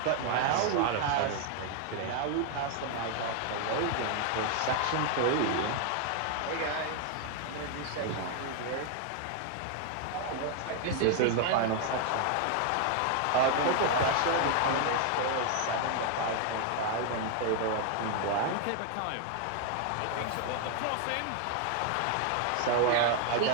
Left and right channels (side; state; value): both; different; correlation 0.00